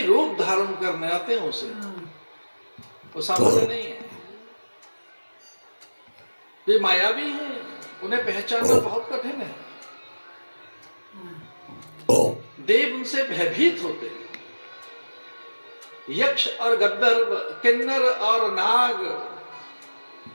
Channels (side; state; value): both; inverted; correlation -1.00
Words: रूप धारण करने आते हैं उसे, वो सामान्य नहीं है। वे मायावी हैं, उन्हें पहचानना बहुत कठिन है। देव उनसे भयभीत होते हैं। यक्ष और गंधर्व, किन्नर और नाग,